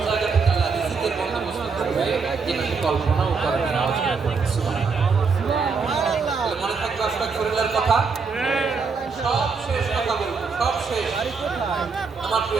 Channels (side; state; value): left; quieter; 5.0 dB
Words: জায়গা থেকে আল্লাহ রিজিকের বন্দোবস্ত করবে যেটা কল্পনাও করবে না। সুবহানাল্লাহ। মনে থাকবে আস্তাগফিরুল্লাহর কথা, সব শেষ কথা বলবো, সব শেষ। আমার